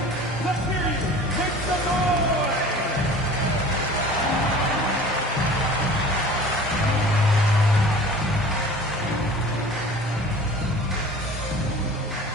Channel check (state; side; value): normal; both; correlation 0.43